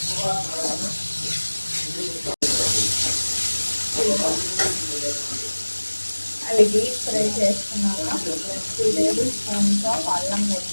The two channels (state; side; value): inverted; both; correlation -1.00